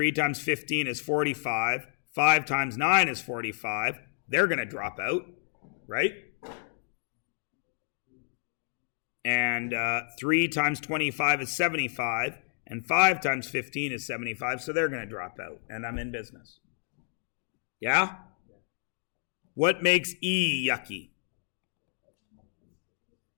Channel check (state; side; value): silent; right; digital silence